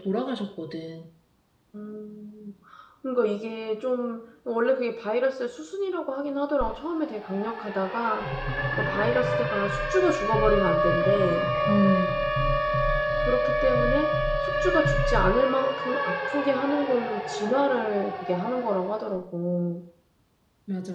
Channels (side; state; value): both; identical; correlation 1.00